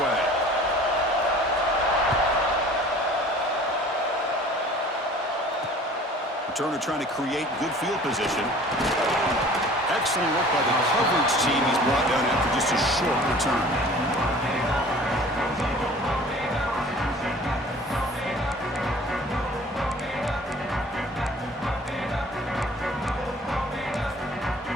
Returner trying to create good field position. Excellent work by the coverage team. He's brought down after just a short return.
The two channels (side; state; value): both; normal; correlation 0.48